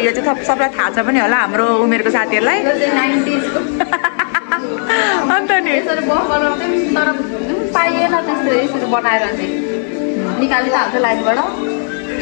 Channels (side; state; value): right; silent; 55 dB below the other